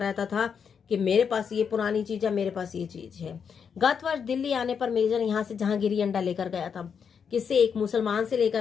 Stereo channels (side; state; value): right; quieter; 6.8 dB